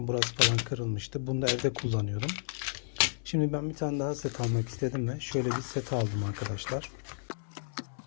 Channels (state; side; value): silent; right; 56 dB below the other